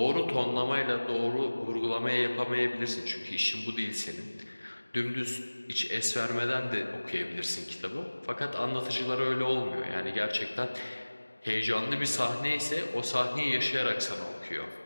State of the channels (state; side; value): inverted; both; correlation -1.00